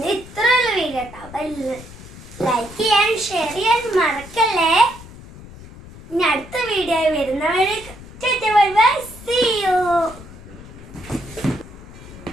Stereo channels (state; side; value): noise; left; rumble, 17 dB below the sound